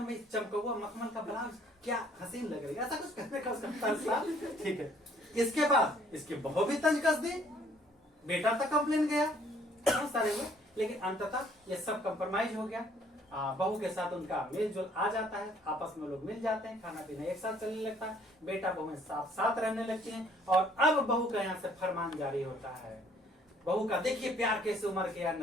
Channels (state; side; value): normal; both; correlation 0.62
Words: में चमकौआ मखमल का ब्लाउज क्या हसीन लग रही है, ऐसा कुछ कहने का उसका तंज था। ठीक है, इसके बाद इसकी बहू भी तंज कस दी, बेटा तक कंप्लेन गया, बहुत सारे हुए, लेकिन अंततः ये सब कंप्रोमाइज हो गया। बहू के साथ उनका मेल जोल आ जाता है, आपस में लोग मिल जाते हैं, खाना पीना एक साथ चलने लगता है, बेटा बहू साथ साथ रहने लगती हैं। और अब बहू का यहाँ से फरमान जारी होता है। बहू का देखिए प्यार कैसे उमर गया